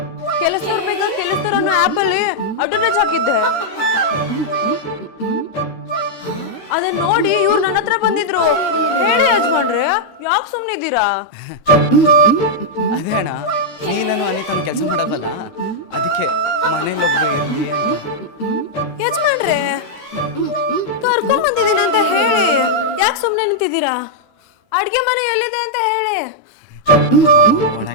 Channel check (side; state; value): right; late; 13 ms